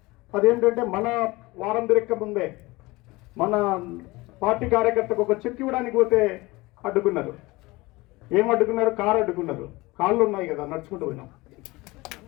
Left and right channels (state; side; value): quieter; right; 21.8 dB